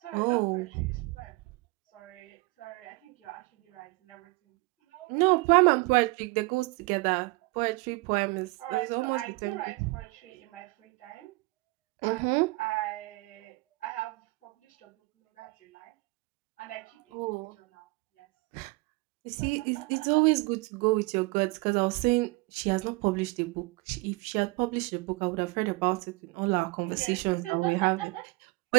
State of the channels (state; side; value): quieter; left; 24.1 dB